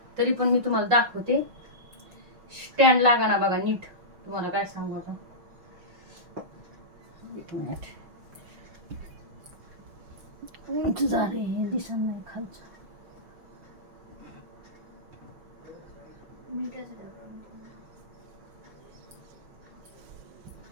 तरी पण मी तुम्हाला दाखवते. स्टँड लागा ना बघा नीट, तुम्हाला काय सांगू आता. एक मिनिट झाले, हे दिसत नाही खालचं.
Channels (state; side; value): late; left; 5.6 ms